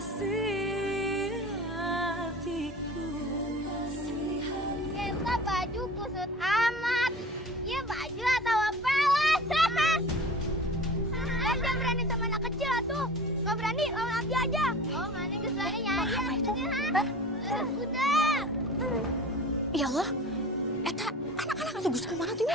hatiku. Kita baju kusut amat. Ya baju atau apa lah. Jangan berani sama anak kecil tuh. Gak berani lawan Abi aja. Oh mana kesulitannya nyari aja. Udah. Ya Allah, eta anak-anak itu Gus kemana tuh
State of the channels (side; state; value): both; normal; correlation 0.39